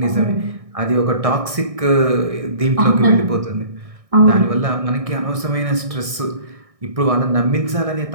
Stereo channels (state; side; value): late; left; 1.6 ms